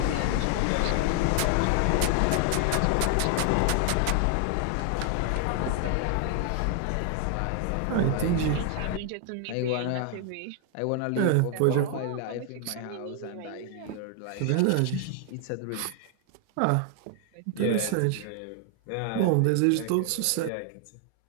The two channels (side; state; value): both; different; correlation 0.00